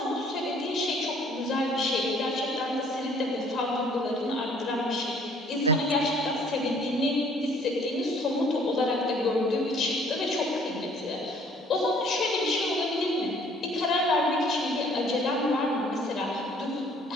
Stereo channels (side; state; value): both; normal; correlation 0.58